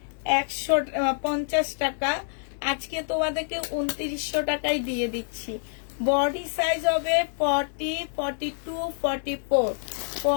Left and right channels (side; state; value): right; silent; digital silence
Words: টাকা, আজকে তোমাদেরকে 2900 টাকায় দিয়ে দিচ্ছি। বডি সাইজ হবে 40 42 44